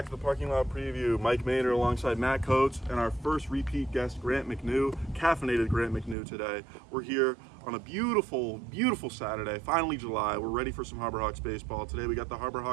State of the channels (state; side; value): drops out; left; at 6.2 s